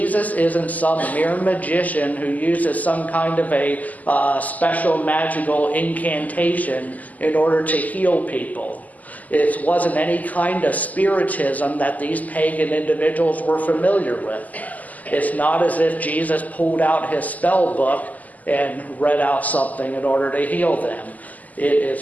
isn't some mere magician who uses some kind of a special magical incantation in order to heal people. It wasn't any kind of spiritism that these pagan individuals were familiar with. It's not as if Jesus pulled out his spell book and read out something in order to heal them. It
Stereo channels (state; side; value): late; right; 0.078 ms